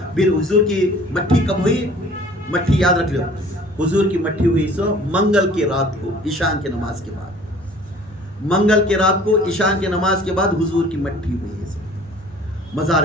फिर हुजूर की मट्ठी कब हुई, मट्ठी याद रख लो, हुजूर की मट्ठी हुई सो मंगल की रात को ईशान की नमाज के बाद। मंगल की रात को ईशान की नमाज के बाद हुजूर की मट्टी हुई है सब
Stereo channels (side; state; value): both; normal; correlation 0.50